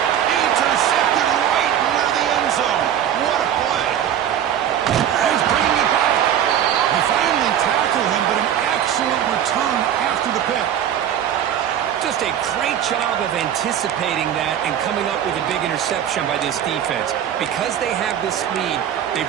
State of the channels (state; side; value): quieter; left; 10.0 dB